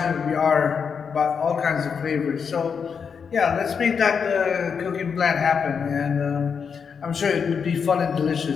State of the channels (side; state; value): right; quieter; 6.3 dB